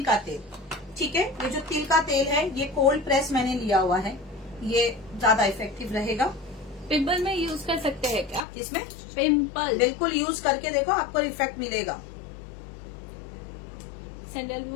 का तेल। ठीक है, ये जो तिल का तेल है ये कोल्ड प्रेस मैंने लिया हुआ है, ये ज्यादा इफेक्टिव रहेगा। पिंपल में यूज कर सकते हैं क्या? इसमें पिंपल बिल्कुल यूज करके देखो, आपको इफेक्ट मिलेगा।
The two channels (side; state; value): right; drops out; at 8.5 s